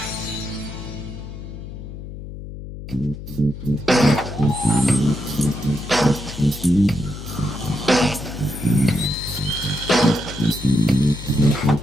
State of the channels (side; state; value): left; noise; hum, 11 dB below the sound